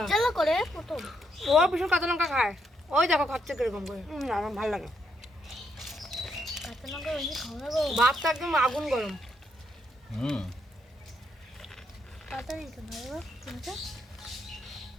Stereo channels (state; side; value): normal; both; correlation 0.77